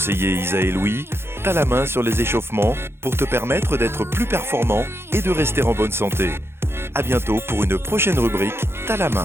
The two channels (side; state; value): left; late; 0.12 ms